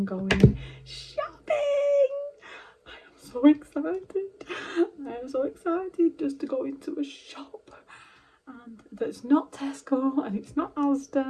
going shopping. I am so excited. I am so excited just to go into a shop, and that's not Tesco, and it's not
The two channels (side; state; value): both; identical; correlation 1.00